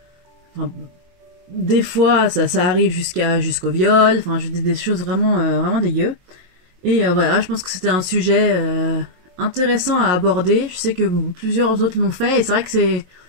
des fois ça arrive jusqu'au viol, des choses vraiment dégueu. Et voilà, je pense que c'était un sujet intéressant à aborder. Je sais que plusieurs autres l'ont fait, et c'est vrai que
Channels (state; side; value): late; left; 22 ms